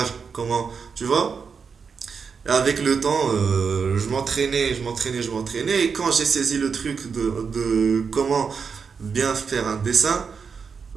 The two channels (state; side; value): quieter; left; 5.8 dB